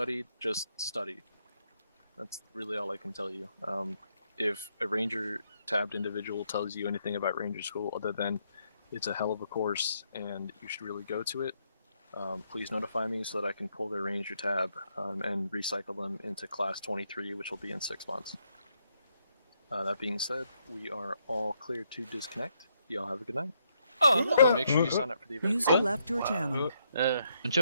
just study. That's really all I can tell you. If a ranger tabbed individual tells you anything about ranger school other than it's a hell of a course and you should really go to it, please notify me so that I can pull their ranger tab and recycle them into class 23, which will be in 6 months. That being said, we are all clear to disconnect. Y'all have a good night. So make sure you sign up for the event. User left your channel.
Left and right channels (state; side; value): inverted; both; correlation -0.76